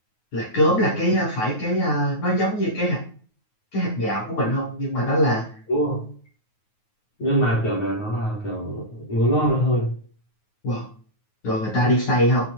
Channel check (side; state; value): right; late; 9.4 ms